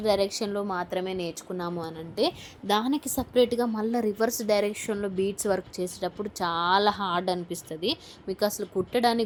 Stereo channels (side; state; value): both; identical; correlation 1.00